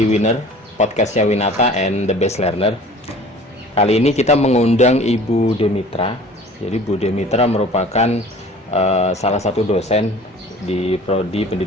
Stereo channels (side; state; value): both; normal; correlation 0.46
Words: Winner, podcastnya Winata and the Best Learner. Kali ini kita mengundang Ibu Demitra. Jadi Bu Demitra merupakan salah satu dosen di Prodi